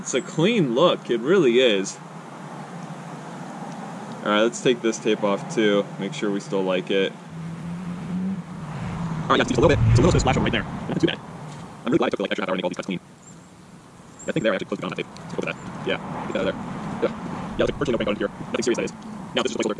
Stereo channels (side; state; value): both; identical; correlation 1.00